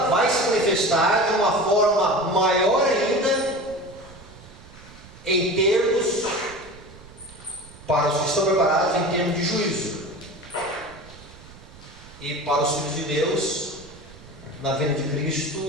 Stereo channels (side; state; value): right; noise; rumble, 20 dB below the sound